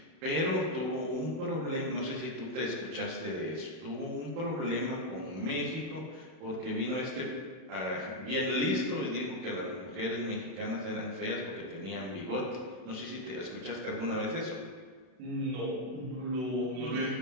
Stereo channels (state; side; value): late; left; 31 ms